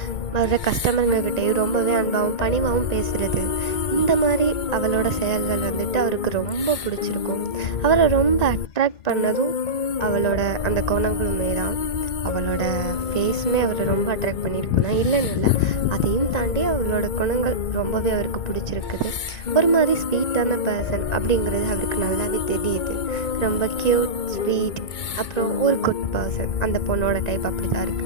வர்ற கஸ்டமருங்கக்கிட்டேயும் ரொம்பவே அன்பாகவும் பணிவாகவும் பேசுகிறது. இந்த மாதிரி அவளோட செயல்கள் வந்துட்டு அவருக்கு ரொம்ப பிடிச்சிருக்கும். அவரை ரொம்ப அட்ராக்ட் பண்ணதும் அவளோட அந்த குணங்களுமே தான். அவளோட ஃபேஸுமே அவரை ரொம்ப அட்ராக்ட் பண்ணியிருக்கும் தான், இல்லைன்னு இல்லை. அதையும் தாண்டி அவளோட குணங்கள் ரொம்பவே அவருக்கு பிடிச்சிருக்குது. ஒரு மாதிரி ஸ்வீட்டான பர்சன் அப்படிங்கிறது அவருக்கு நல்லாவே தெரியுது. ரொம்ப க்யூட், ஸ்வீட், அப்புறம் ஒரு குட் பர்சன். அந்த பொண்ணோட டைப் அப்படி தான்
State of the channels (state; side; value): late; right; 2.2 ms